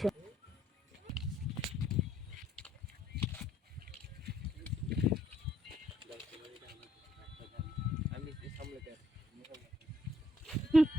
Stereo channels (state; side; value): normal; both; correlation 0.68